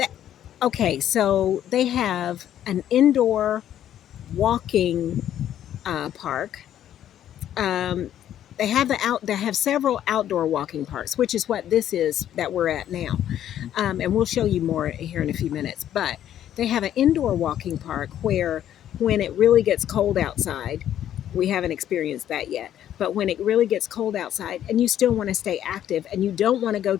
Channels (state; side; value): quieter; right; 11.0 dB